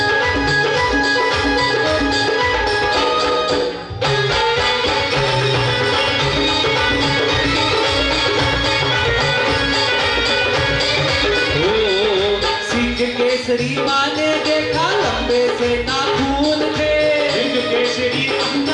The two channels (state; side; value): identical; both; correlation 1.00